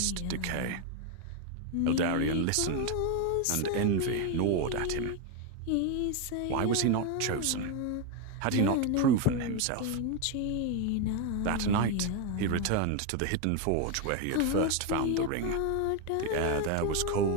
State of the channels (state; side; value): different; both; correlation 0.02